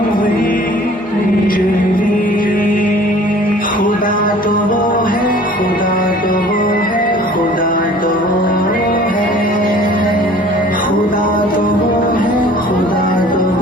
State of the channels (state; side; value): normal; both; correlation 0.49